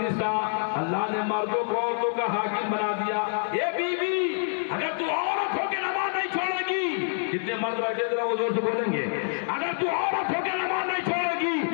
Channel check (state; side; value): silent; right; digital silence